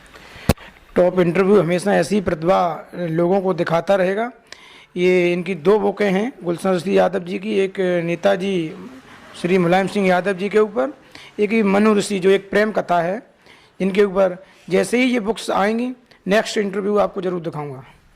टॉप इंटरव्यू हमेशा ऐसी प्रतिभा लोगों को दिखाता रहेगा। ये इनकी 2 बुकें हैं गुलशन ऋषि यादव जी की, एक नेताजी श्री मुलायम सिंह यादव जी के ऊपर, एक मनु ऋषि जो एक प्रेम कथा है, इनके ऊपर। जैसे ही ये बुक्स आएंगी नेक्स्ट इंटरव्यू आपको ज़रूर दिखाऊंगा।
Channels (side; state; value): both; identical; correlation 1.00